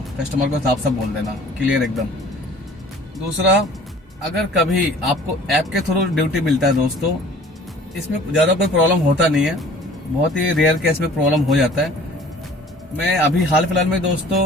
कस्टमर को साफ साफ बोल देना, क्लियर एकदम। दूसरा, अगर कभी आपको ऐप के थ्रू ड्यूटी मिलता है दोस्तों, इसमें ज्यादा कोई प्रॉब्लम होता नहीं है। बहुत ही रेयर केस में प्रॉब्लम हो जाता है। मैं अभी हाल फिलहाल में दोस्तों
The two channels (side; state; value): both; normal; correlation 0.49